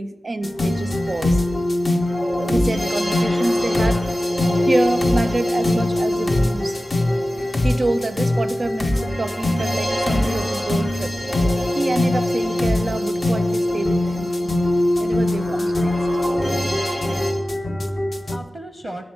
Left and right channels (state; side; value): normal; both; correlation 0.95